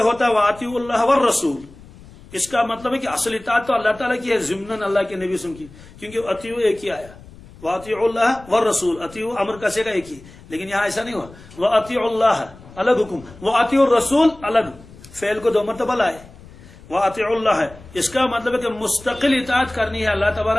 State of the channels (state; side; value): noise; left; rumble, 21 dB below the sound